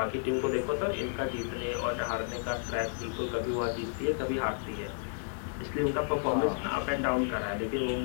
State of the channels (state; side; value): silent; right; 57 dB below the other